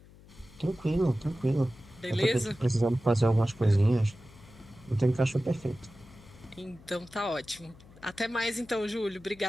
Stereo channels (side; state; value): left; noise; hum, 22 dB below the sound